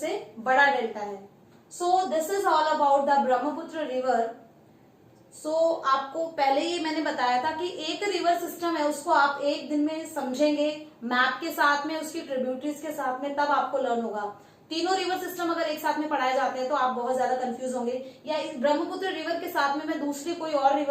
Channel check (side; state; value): both; identical; correlation 1.00